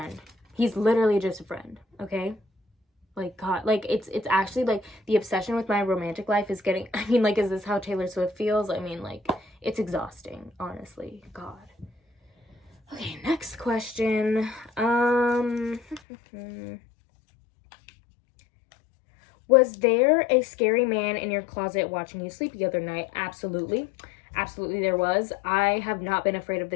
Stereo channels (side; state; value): right; drops out; at 16.0 s